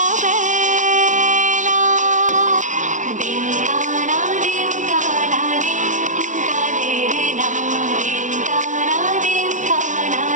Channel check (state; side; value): late; left; 0.36 ms